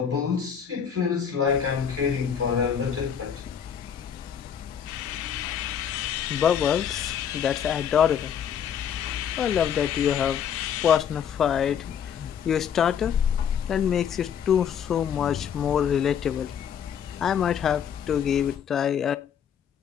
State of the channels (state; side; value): quieter; right; 8.3 dB